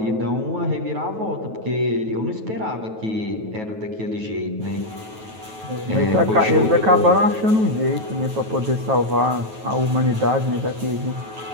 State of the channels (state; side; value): late; left; 9.2 ms